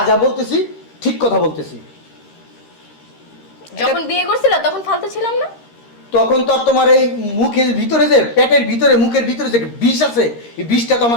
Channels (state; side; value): late; right; 13 ms